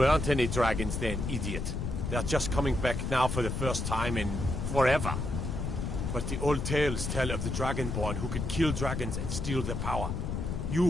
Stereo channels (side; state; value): left; noise; rumble, 3 dB below the sound